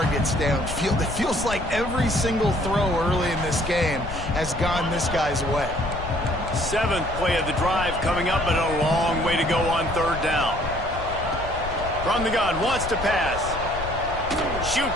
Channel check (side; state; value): left; noise; rumble, 9 dB below the sound